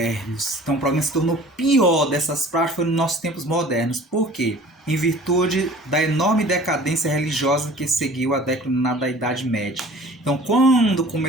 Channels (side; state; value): both; normal; correlation 0.47